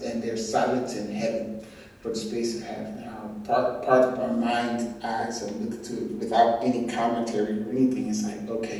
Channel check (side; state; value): both; identical; correlation 1.00